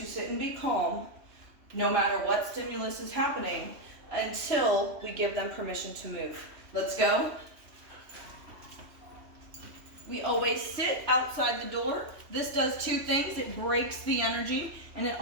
sit and be calm no matter what stimulus is happening until we give them permission to move. Let's go. We always sit outside the door. This does two things. It breaks the energy, and it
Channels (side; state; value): left; late; 3.1 ms